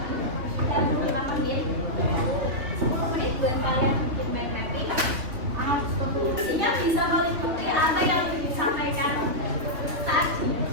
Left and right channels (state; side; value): late; left; 3.3 ms